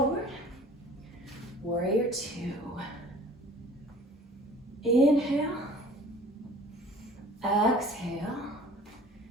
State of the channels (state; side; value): normal; both; correlation 0.47